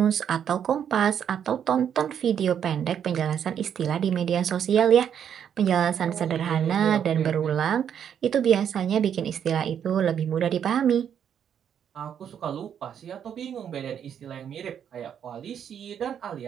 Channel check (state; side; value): quieter; left; 8.6 dB